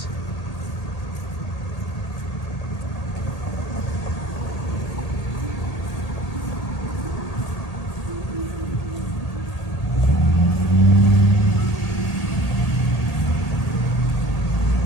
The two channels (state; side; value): late; right; 1.8 ms